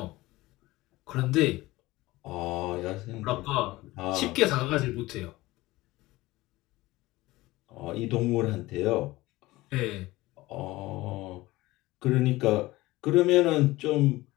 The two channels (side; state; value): right; quieter; 19.1 dB